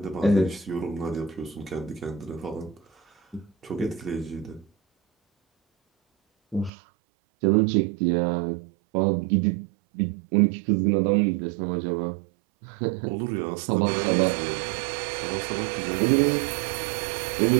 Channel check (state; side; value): drops out; left; at 6.7 s